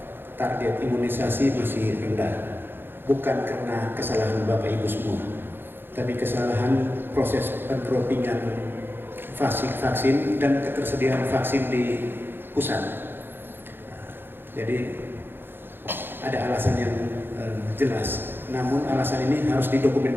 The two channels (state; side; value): late; left; 0.10 ms